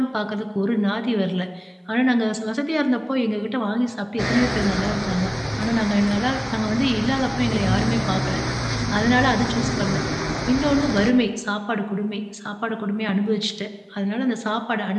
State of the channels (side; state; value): both; identical; correlation 1.00